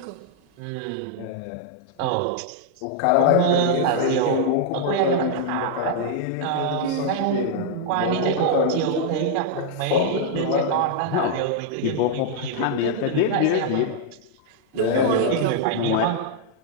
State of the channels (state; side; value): different; both; correlation -0.01